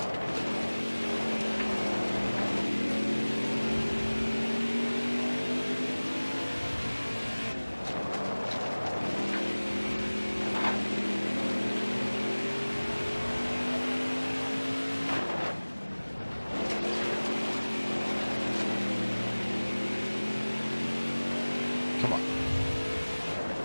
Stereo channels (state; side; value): inverted; both; correlation -1.00